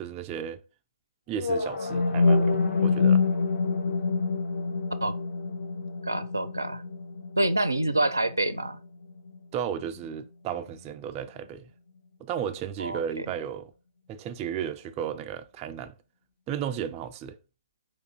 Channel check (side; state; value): both; inverted; correlation -0.70